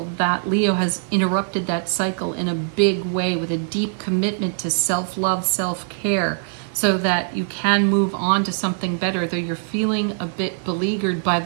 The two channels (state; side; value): silent; left; digital silence